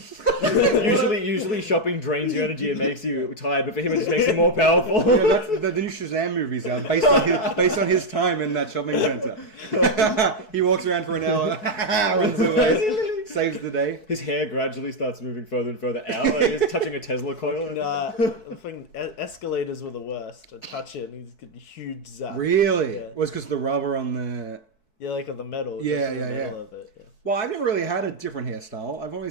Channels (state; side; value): late; right; 4.6 ms